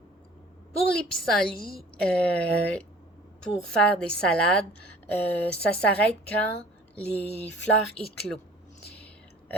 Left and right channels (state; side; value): normal; both; correlation 0.48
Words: Pour les pissenlits, pour faire des salades, ça s'arrête quand les fleurs éclosent.